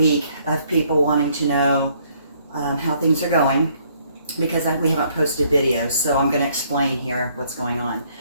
of people wanting to know how things are going because we haven't posted videos, so I'm going to explain here what's going on.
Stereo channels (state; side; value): inverted; both; correlation -0.66